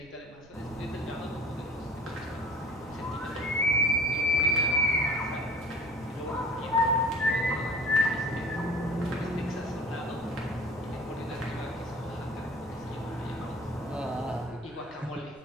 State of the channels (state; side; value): noise; right; rumble, 24 dB below the sound